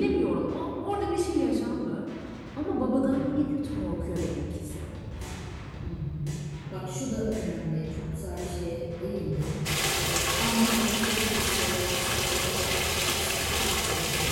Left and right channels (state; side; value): identical; both; correlation 1.00